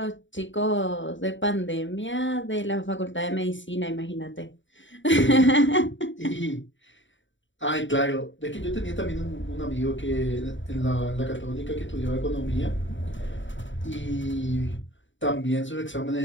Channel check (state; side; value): late; right; 0.55 ms